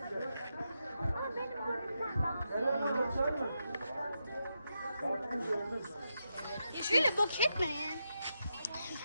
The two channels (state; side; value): inverted; both; correlation -0.85